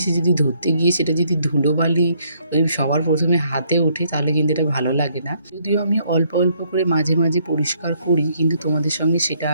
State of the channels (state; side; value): inverted; both; correlation -0.69